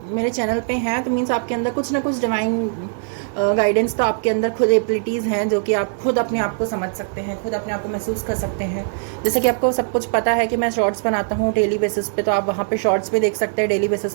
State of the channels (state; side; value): silent; left; 65 dB below the other